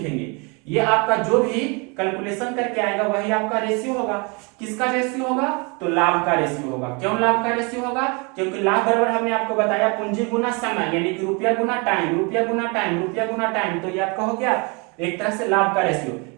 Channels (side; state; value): left; quieter; 31.2 dB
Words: ये आपका जो भी कैलकुलेशन करके आएगा वही आपका रेशियो होगा। किसका रेशियो होगा, तो लाभ का रेशियो होगा। क्यों लाभ का रेशियो होगा, क्योंकि लाभ बराबर हमने आपको बताया पूंजी गुना समय, यानी कि रुपया गुना टाइम, रुपया गुना टाइम, रुपया गुना टाइम। तो ये आपका हो गया एक तरह से लाभ का रेशियो।